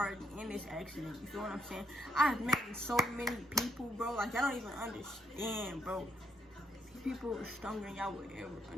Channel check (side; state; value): both; normal; correlation 0.73